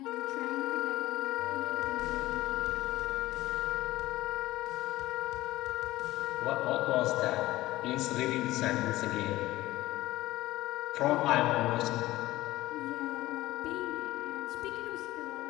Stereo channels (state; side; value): quieter; right; 17.1 dB